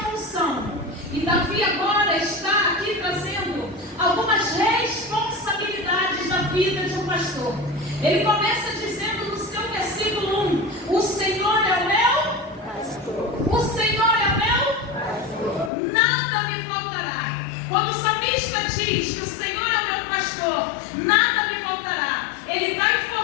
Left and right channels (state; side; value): drops out; right; at 15.7 s